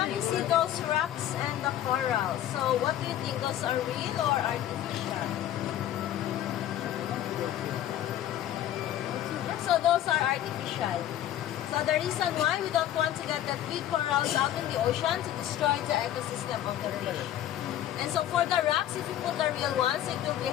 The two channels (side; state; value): right; quieter; 11.9 dB